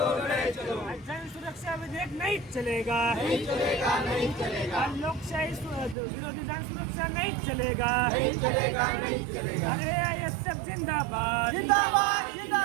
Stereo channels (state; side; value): drops out; left; at 6.0 s